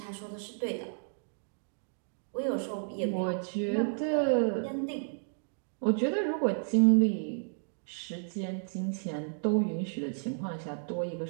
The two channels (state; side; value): silent; left; digital silence